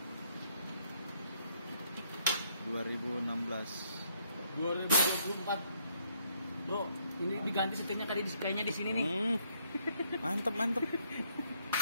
2016. 2024. Bro, ini diganti setirnya tadi kayaknya di sini nih. Mantep.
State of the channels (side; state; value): both; inverted; correlation -0.69